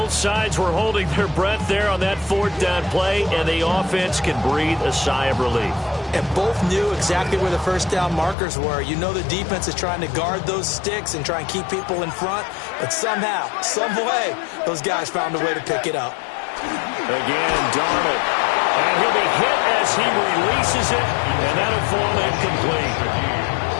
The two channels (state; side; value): drops out; right; at 8.3 s